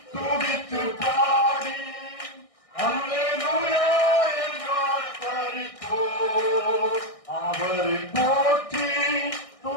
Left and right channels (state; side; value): late; right; 1.6 ms